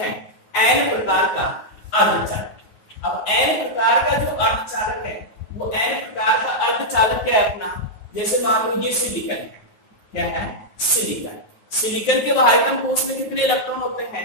N प्रकार का अर्धचालक। अब N प्रकार का जो अर्धचालक है वो N प्रकार का अर्धचालक क्या है अपना, जैसे मान लो ये सिलिकॉन है, क्या है, सिलिकॉन। सिलिकॉन के बाहरी कोश में कितने इलेक्ट्रॉन होते हैं,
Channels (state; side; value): late; right; 9.4 ms